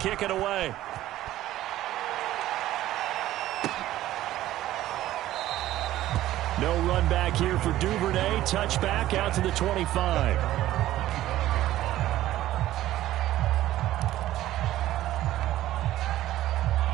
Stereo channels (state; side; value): quieter; left; 14.4 dB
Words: it away. No run back here for Duvernay. Touchback out to the 25.